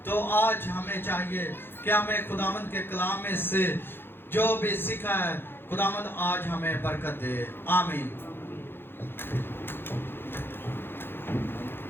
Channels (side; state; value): right; late; 0.10 ms